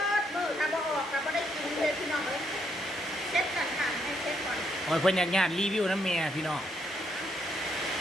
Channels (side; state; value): both; normal; correlation 0.75